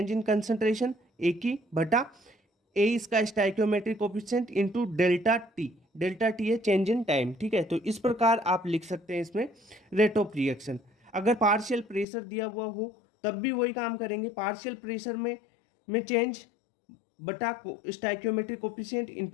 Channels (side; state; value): right; drops out; at 12.1 s